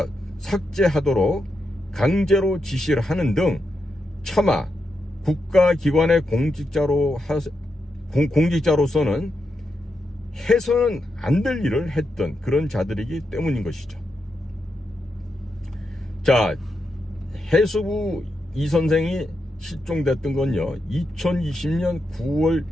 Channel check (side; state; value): both; normal; correlation 0.85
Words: 삭제하도록 강제로 지시를 하는 등 차마 국가기관의 공직자로서는 해서는 안 될 일을 했던 그런 자들이기 때문인 것이죠. 자, 해수부 이 선생이 실종됐던 건요, 2020년 9월